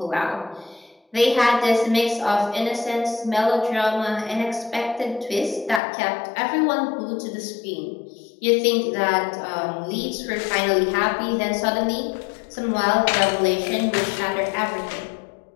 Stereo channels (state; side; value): drops out; right; at 5.8 s